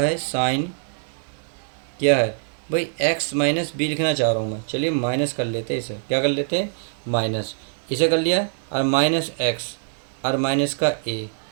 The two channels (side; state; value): left; silent; digital silence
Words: साइन क्या है भाई एक्स माइनस बी लिखना चाह रहा हूँ मैं। चलिए माइनस कर लेते हैं, इसे क्या कर लेते हैं, माइनस, इसे कर लिया, और माइनस एक्स और माइनस का ए।